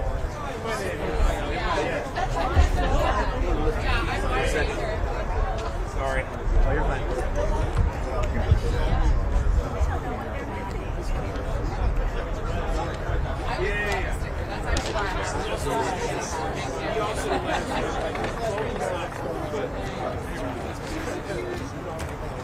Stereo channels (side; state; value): both; identical; correlation 1.00